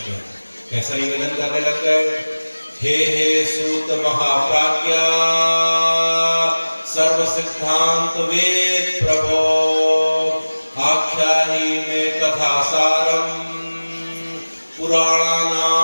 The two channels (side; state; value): both; inverted; correlation -1.00